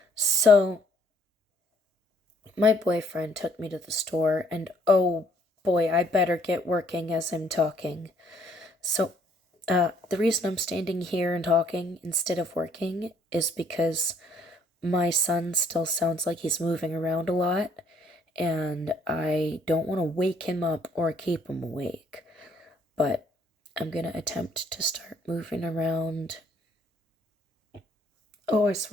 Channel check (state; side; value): normal; both; correlation 0.64